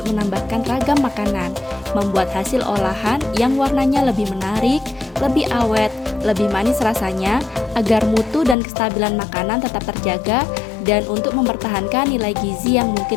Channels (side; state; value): right; drops out; at 8.6 s